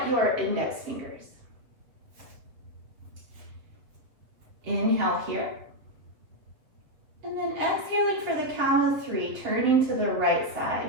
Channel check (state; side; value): late; left; 7.7 ms